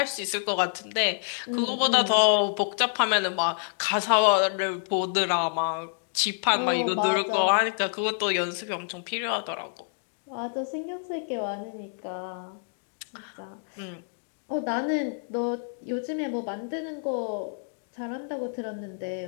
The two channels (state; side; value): silent; right; digital silence